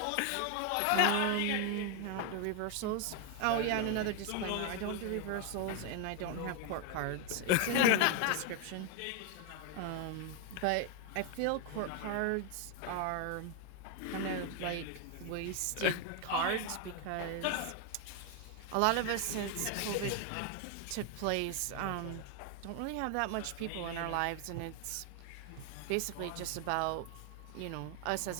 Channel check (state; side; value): different; both; correlation 0.01